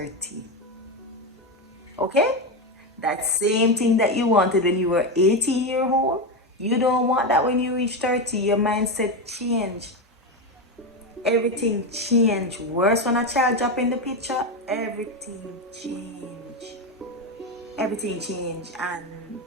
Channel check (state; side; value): normal; both; correlation 0.13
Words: Okay? That same thing that you wanted when you were 18 years old, you don't want that when you reach 30. Your mindset change. Everything change. Worse when a child drop in the picture, everything change. Everything change. And